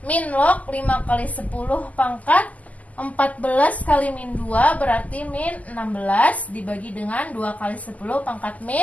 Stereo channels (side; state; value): right; late; 0.075 ms